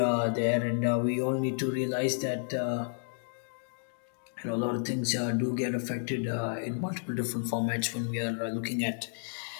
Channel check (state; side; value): silent; right; digital silence